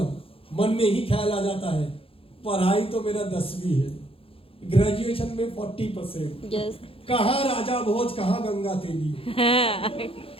मन में ही ख्याल आ जाता है, पढ़ाई तो मेरा 10वीं है, ग्रेजुएशन में 40%। यस। कहाँ राजा भोज, कहाँ गंगा तेली।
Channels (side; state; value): right; late; 0.27 ms